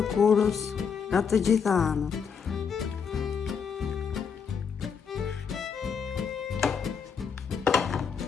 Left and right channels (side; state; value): right; quieter; 6.5 dB